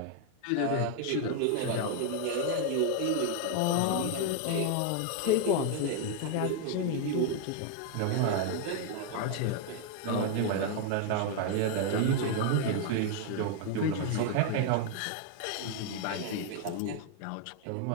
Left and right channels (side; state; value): both; different; correlation 0.00